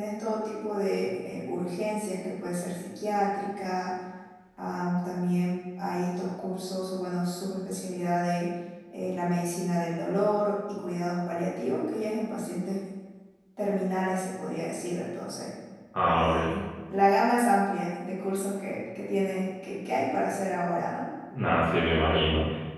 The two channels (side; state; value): both; identical; correlation 1.00